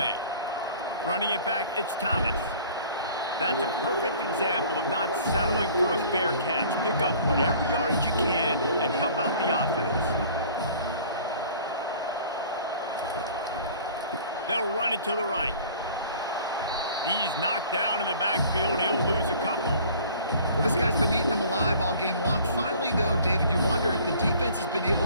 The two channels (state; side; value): inverted; both; correlation -0.49